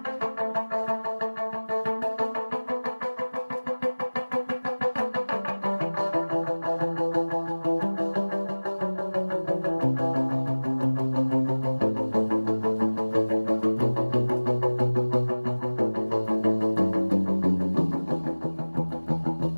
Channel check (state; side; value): inverted; both; correlation -1.00